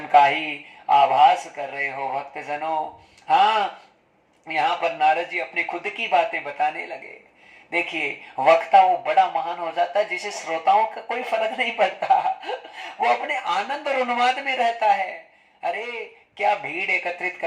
का ही आभास कर रहे हो भक्तजनों। हाँ, यहाँ पर नारद जी अपनी खुद की बातें बताने लगे। देखिए, वक्ता वो बड़ा महान हो जाता है जिसे श्रोताओं का कोई फर्क नहीं पड़ता। वो अपने आनंद और उन्माद में रहता है। अरे, क्या भीड़ एकत्रित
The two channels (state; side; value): identical; both; correlation 1.00